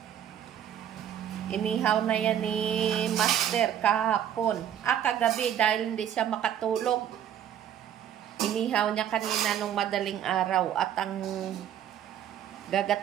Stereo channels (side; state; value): left; quieter; 10.1 dB